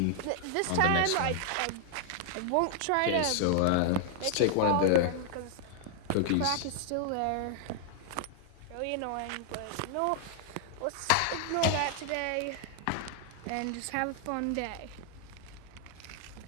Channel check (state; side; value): different; both; correlation 0.00